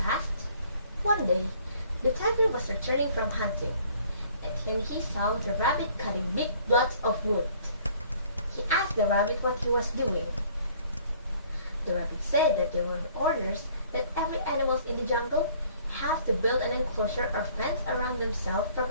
passed. One day, the tiger was returning from hunting, and he saw the rabbit cutting big blocks of wood. He asked the rabbit what he was doing. The rabbit said that there were orders that every animal in the jungle have to build an enclosure or fence around themselves for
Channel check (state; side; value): inverted; both; correlation -0.57